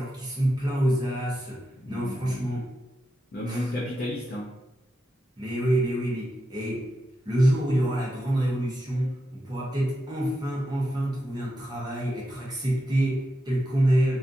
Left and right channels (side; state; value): both; normal; correlation 0.88